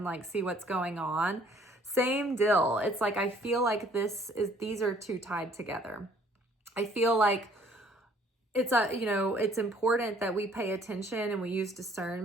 like see what's going on. Same deal. It's like, I feel like these are two tied together. I feel like it's important that we pay attention and we use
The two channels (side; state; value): both; normal; correlation 0.59